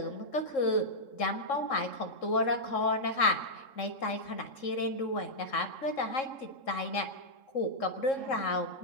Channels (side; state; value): right; late; 3.7 ms